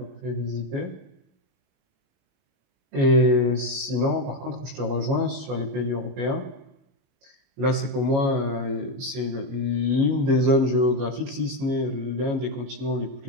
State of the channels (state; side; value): late; left; 22 ms